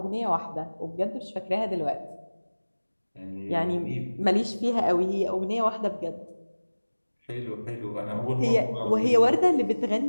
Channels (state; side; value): inverted; both; correlation -1.00